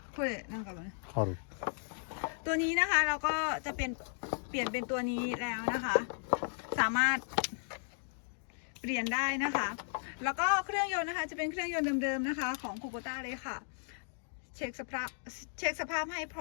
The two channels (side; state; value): right; silent; digital silence